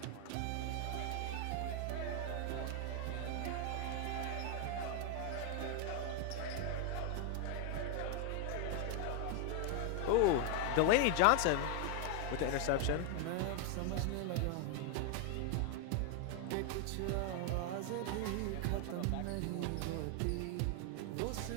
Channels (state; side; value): different; both; correlation 0.00